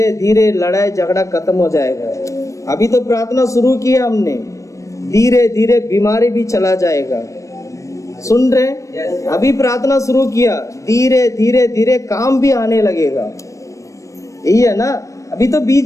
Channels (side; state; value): right; late; 0.15 ms